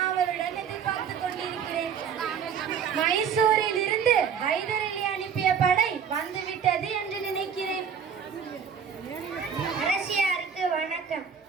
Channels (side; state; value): left; quieter; 7.2 dB